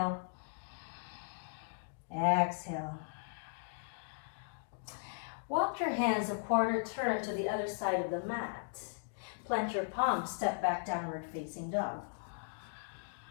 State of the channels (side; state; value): right; silent; digital silence